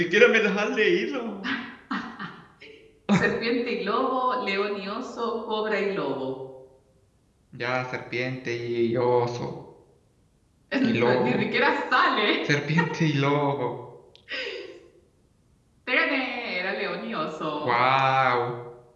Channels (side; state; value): both; identical; correlation 1.00